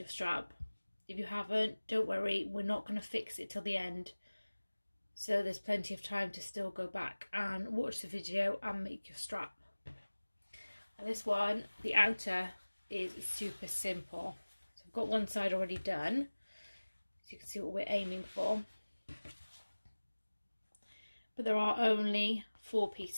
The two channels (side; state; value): both; inverted; correlation -1.00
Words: strap. If you haven't, don't worry, we're not going to fix it till the end, so there's plenty of time to still go back and watch the video and make your strap. And this one, the outer, is super simple. So I've got one side already done, so you can see what we're aiming for. But there are only 4